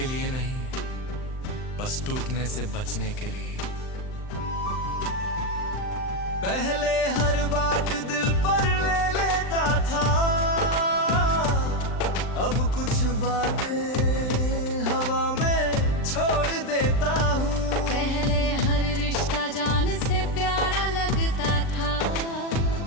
लिए नहीं, बस टूटने से बचने के लिए। पहले हर बात दिल पर ले लेता था, अब कुछ बातें हवा में छोड़ देता हूँ। पहले हर रिश्ता जान से प्यारा लगता था,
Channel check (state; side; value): late; right; 39 ms